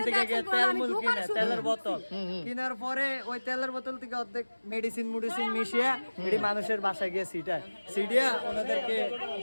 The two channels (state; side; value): inverted; both; correlation -1.00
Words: থেকে গিয়ে দেখছেন, তেল আমি মুল দোকান কিনে শুরু তেলের বোতল কেনার পরে ওই তেলের বোতল থেকে অর্ধেক মেডিসিন মিশিয়ে এটি মানুষের বাসায় গিয়ে সিটিয়া ওনাদেরকে